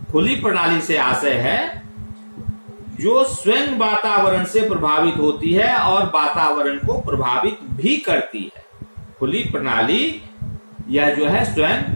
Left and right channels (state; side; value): inverted; both; correlation -1.00